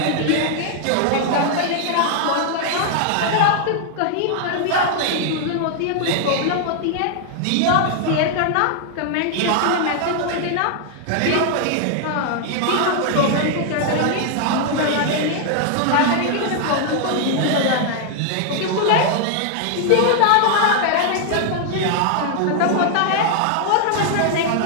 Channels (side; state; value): both; different; correlation 0.00